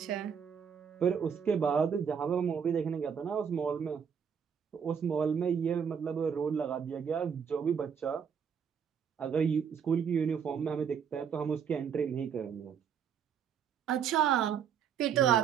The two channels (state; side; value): quieter; left; 7.3 dB